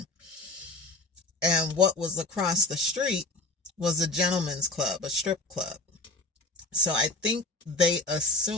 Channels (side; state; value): right; quieter; 3.2 dB